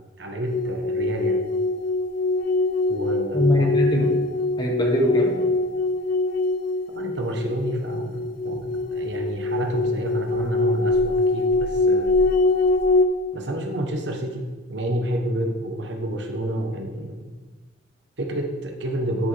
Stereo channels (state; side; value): normal; both; correlation 0.37